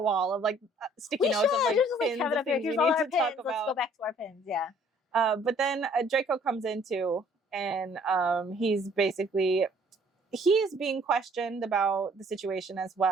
of like sticky notes of like just pins. Have it up here. Here's all our pins. Let's go back to our pins. Yeah. But then Draco comes in too, and he's being questioned about the situation as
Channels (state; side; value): normal; both; correlation 0.59